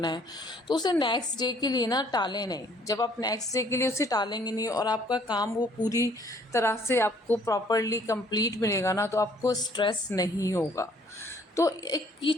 है, तो उसे नेक्स्ट डे के लिए ना टालें नहीं। जब आप नेक्स्ट डे के लिए उसे टालेंगे नहीं और आपका काम वो पूरी तरह से आपको प्रॉपरली कंप्लीट मिलेगा ना, तो आपको स्ट्रेस नहीं होगा। तो एक ये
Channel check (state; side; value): normal; both; correlation 0.61